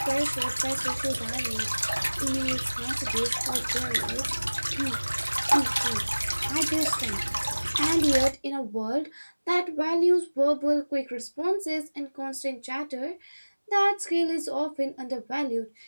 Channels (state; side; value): inverted; both; correlation -1.00